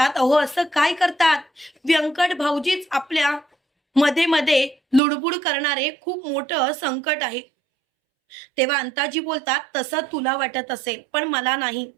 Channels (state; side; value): drops out; left; at 5.0 s